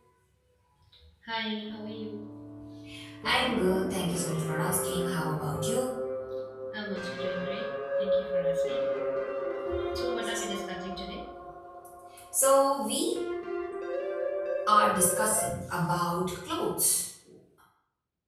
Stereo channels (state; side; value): identical; both; correlation 1.00